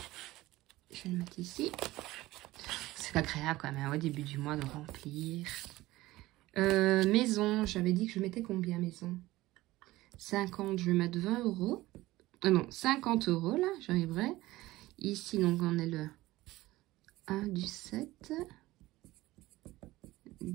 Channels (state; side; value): quieter; left; 17.9 dB